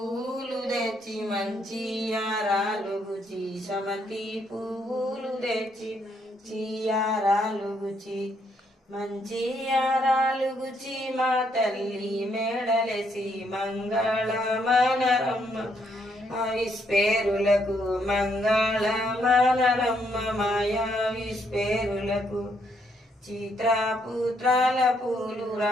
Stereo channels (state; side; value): normal; both; correlation 0.73